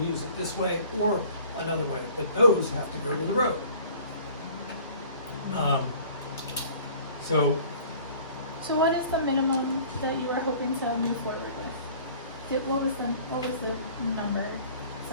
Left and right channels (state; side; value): inverted; both; correlation -0.50